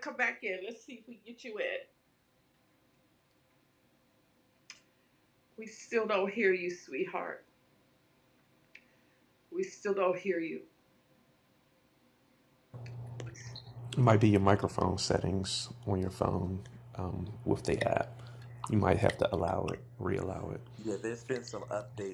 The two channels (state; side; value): identical; both; correlation 1.00